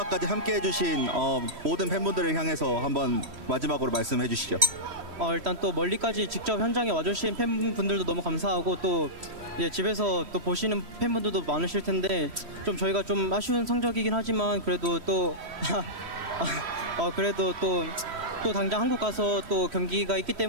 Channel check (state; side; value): late; left; 3.1 ms